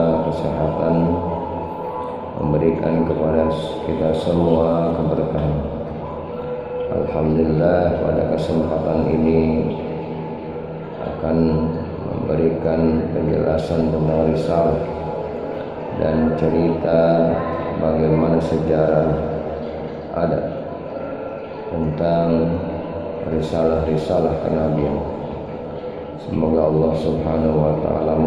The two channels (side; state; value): both; identical; correlation 1.00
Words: kesehatan, memberikan kepada kita semua keberkahan. Alhamdulillah, pada kesempatan ini akan memberikan penjelasan tentang risalah dan cerita bagaimana sejarah ada tentang risalah-risalah kenabian. Semoga Allah Subhanahu wa taala